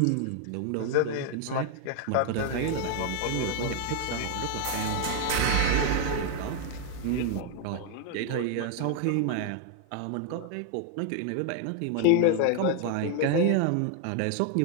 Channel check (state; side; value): different; both; correlation 0.01